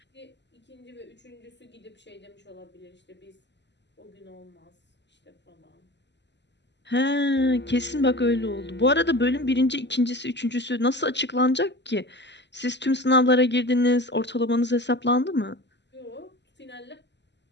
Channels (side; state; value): right; late; 0.51 ms